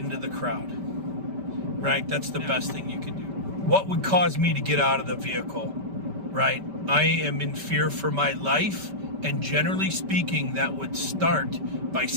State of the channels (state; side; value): late; left; 5.1 ms